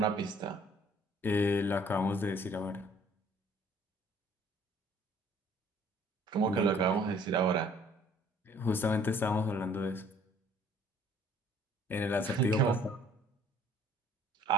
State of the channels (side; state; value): both; normal; correlation 0.56